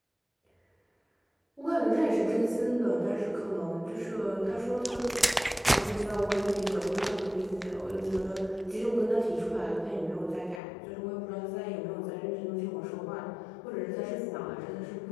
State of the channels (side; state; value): right; drops out; at 10.6 s